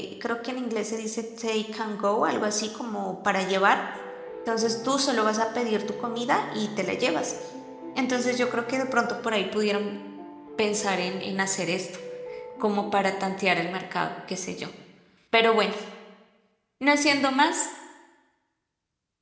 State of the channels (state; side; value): identical; both; correlation 1.00